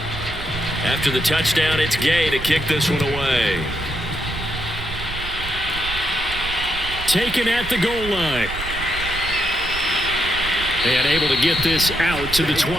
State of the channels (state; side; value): noise; right; rumble, 10 dB below the sound